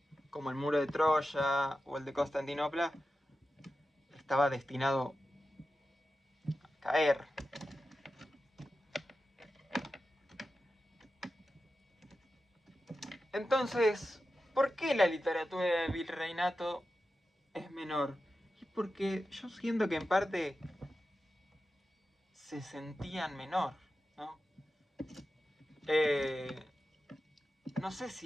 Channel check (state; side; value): normal; both; correlation 0.92